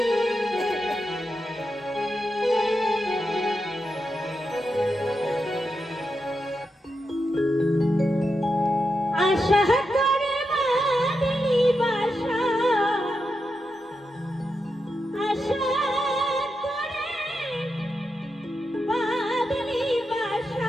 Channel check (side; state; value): both; normal; correlation 0.87